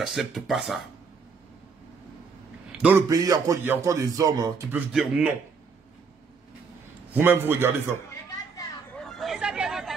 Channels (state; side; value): quieter; left; 5.2 dB